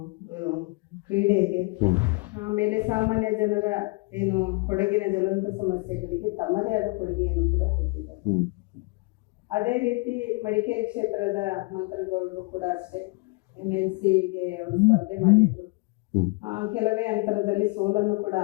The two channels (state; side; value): quieter; right; 27.4 dB